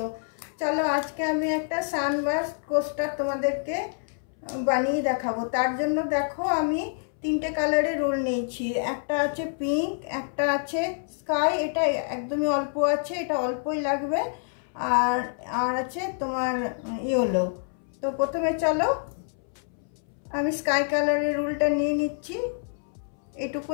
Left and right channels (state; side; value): silent; right; 60 dB below the other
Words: চলো আজকে আমি একটা সানবার্স্ট কোস্টার তোমাদেরকে বানিয়ে দেখাবো। তার জন্য দেখো আমি তিনটে কালারের রোল নিয়েছি। একটা আছে পিঙ্ক, একটা আছে স্কাই, এটা একদমই অল্প আছে, এটা অল্পই লাগবে, আর আছে তোমার ইয়েলো। তো প্রথমে চলো আমি স্কাই কালারের রোলটা নিয়ে নিচ্ছি।